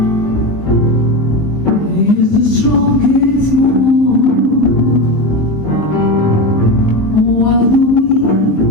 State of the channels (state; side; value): late; right; 19 ms